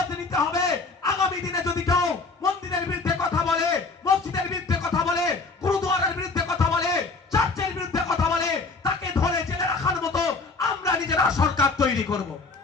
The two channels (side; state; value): right; quieter; 4.0 dB